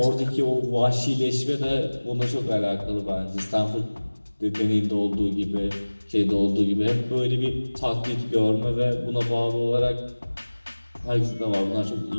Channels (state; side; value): inverted; both; correlation -1.00